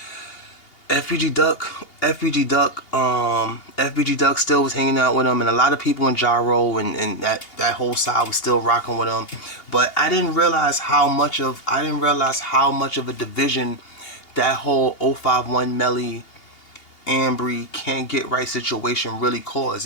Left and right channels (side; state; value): right; late; 2.8 ms